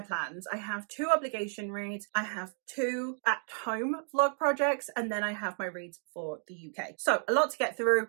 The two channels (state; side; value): silent; left; 56 dB below the other